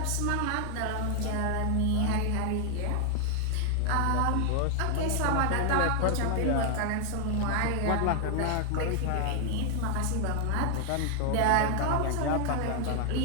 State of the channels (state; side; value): different; both; correlation 0.00